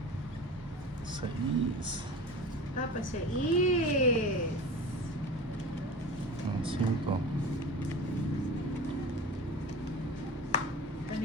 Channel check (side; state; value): both; normal; correlation 0.34